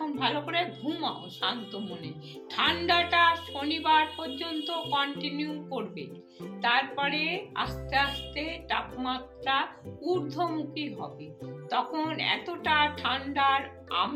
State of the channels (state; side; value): identical; both; correlation 1.00